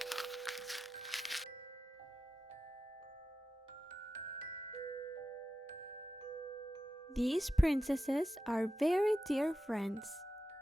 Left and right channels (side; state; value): both; normal; correlation 0.92